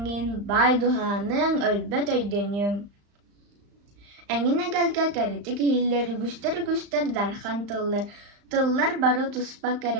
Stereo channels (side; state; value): left; late; 35 ms